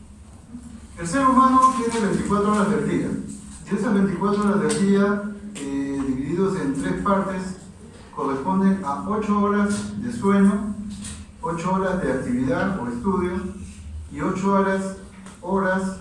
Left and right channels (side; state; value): both; identical; correlation 1.00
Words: El ser humano tiene 24 horas del día, y esas 24 horas del día, divididos en 3 partes, corresponden a 8 horas de sueño, 8 horas de actividad o estudio y 8 horas